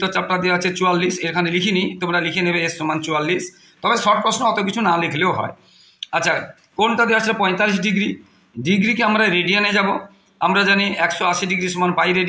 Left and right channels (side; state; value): both; identical; correlation 1.00